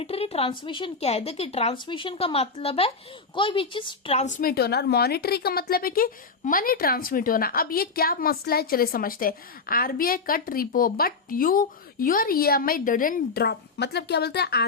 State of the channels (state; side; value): quieter; right; 4.6 dB